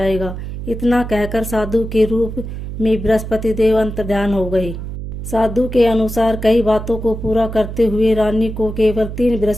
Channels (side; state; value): right; noise; hum, 7 dB below the sound